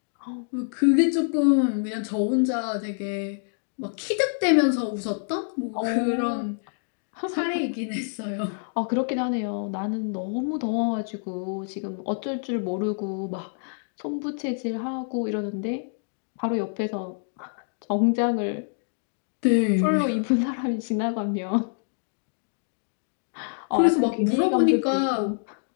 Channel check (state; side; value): silent; right; digital silence